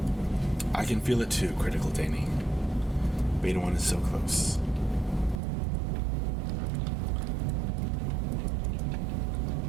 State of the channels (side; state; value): left; drops out; at 5.4 s